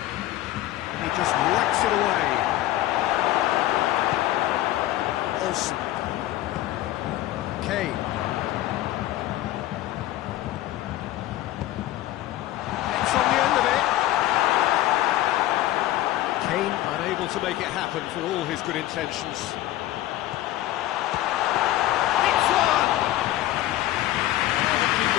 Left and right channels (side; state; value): right; quieter; 15.0 dB